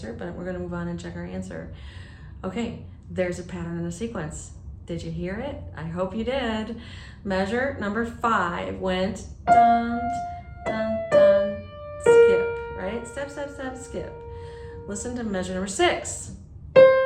but we're gonna move on and check our answer. Okay, there's a pattern and a sequence. Did you hear it? I hope you did. Measure number 5 went dun, dun, dun, skip, right? Step, step, step, skip. Listen to measure number 6.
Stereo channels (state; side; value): identical; both; correlation 1.00